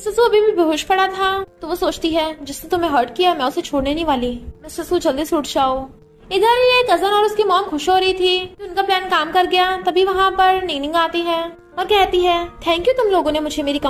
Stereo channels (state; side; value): identical; both; correlation 1.00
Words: सू अभी भी बेहोश पड़ा था, तो वो सोचती है जिसने तुम्हें हर्ट किया मैं उसे छोड़ने नहीं वाली, मिस्टर सू जल्दी से उठ जाओ। इधर ये कजन और उसकी मॉम खुश हो रही थी कि उनका प्लान काम कर गया। तभी वहाँ पर निंगनिंग आती है और कहती है थैंक यू, तुम लोगों ने मुझे मेरी